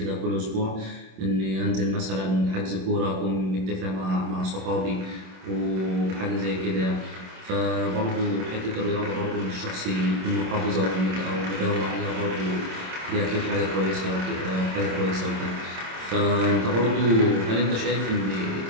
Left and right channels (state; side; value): late; left; 27 ms